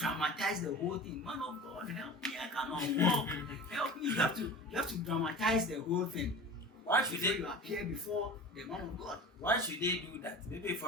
the whole thing. Man of God, help me, I cannot walk. Help me. You have to dramatize the whole thing. Why should they appear before the man of God? Why should they do that? Maybe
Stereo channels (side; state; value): both; normal; correlation 0.35